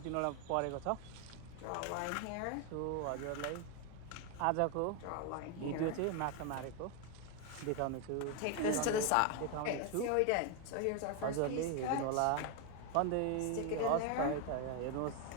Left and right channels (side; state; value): both; different; correlation 0.01